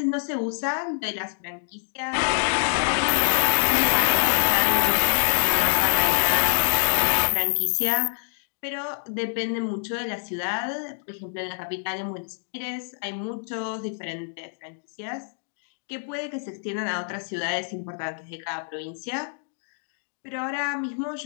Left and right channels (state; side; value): silent; right; digital silence